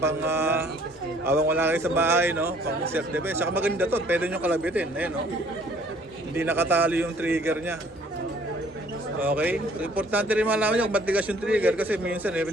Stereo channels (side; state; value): both; normal; correlation 0.58